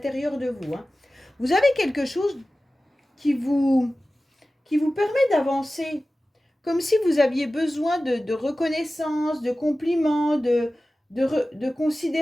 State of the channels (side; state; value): both; normal; correlation 0.96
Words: de vous, hein. Vous avez quelque chose qui vous, qui vous permet d'avancer, comme si vous aviez besoin de reconnaissance, de compliments, de